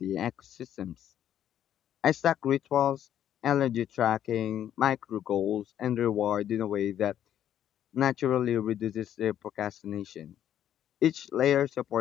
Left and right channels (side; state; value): right; quieter; 10.6 dB